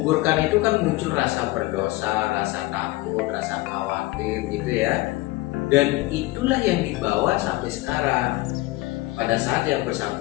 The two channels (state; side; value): quieter; right; 19.6 dB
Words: itu kan muncul rasa berdosa, rasa takut, rasa khawatir gitu ya. Dan itulah yang dibawa sampai sekarang. Pada saat yang